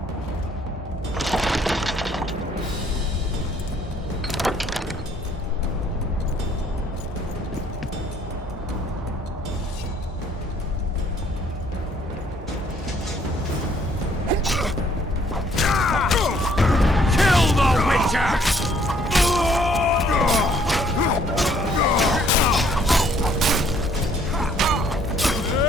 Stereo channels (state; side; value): normal; both; correlation 0.63